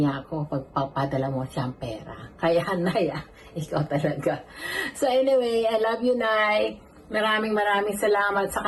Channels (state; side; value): identical; both; correlation 1.00